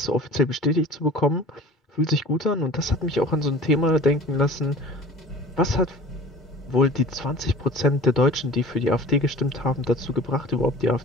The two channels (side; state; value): both; normal; correlation 0.42